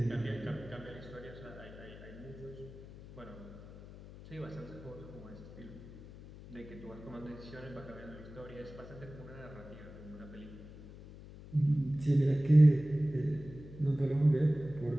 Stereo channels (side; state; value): left; noise; hum, 16 dB below the sound